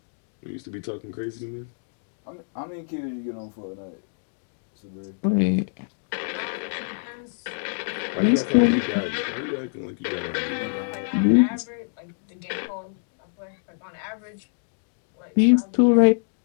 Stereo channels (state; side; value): silent; right; digital silence